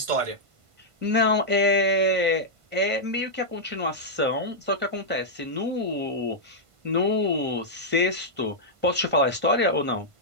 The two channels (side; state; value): left; late; 1.5 ms